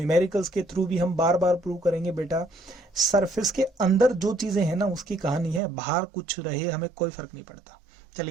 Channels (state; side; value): drops out; left; at 5.6 s